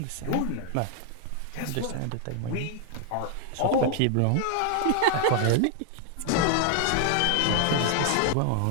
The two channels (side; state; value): both; different; correlation 0.00